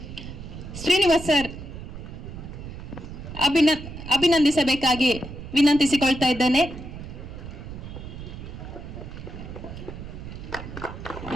ಶ್ರೀನಿವಾಸ್ ಸರ್ ಅಭಿನಂದಿಸಬೇಕಾಗಿ ವಿನಂತಿಸಿಕೊಳ್ತಾ ಇದ್ದೇನೆ.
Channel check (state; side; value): noise; right; rumble, 11 dB below the sound